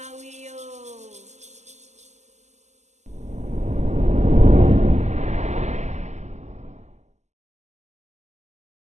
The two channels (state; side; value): late; left; 0.33 ms